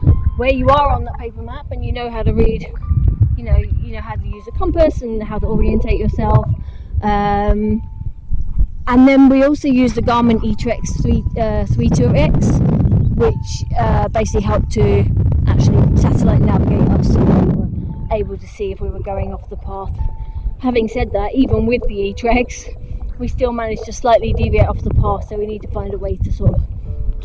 where you are on that paper map, and you know how to read, you know how to use a compass and how to orientate yourself. And then we also use the Garmin eTrex 32X, which basically helped to actually satellite navigate us, so we were able to see if we were going off the path. Having said that, even with the eTrex, we still managed to slightly deviate off the path, so we need to find a way to sort of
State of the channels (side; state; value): both; identical; correlation 1.00